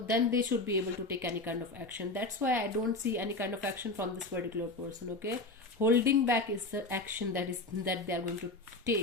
they should be able to take any kind of action. That's why I don't see any kind of action from this particular person. Okay, holding back is the action that they are going to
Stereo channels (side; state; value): right; quieter; 3.0 dB